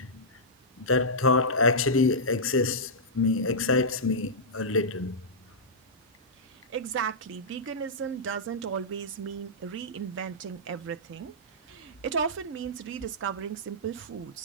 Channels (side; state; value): both; normal; correlation -0.12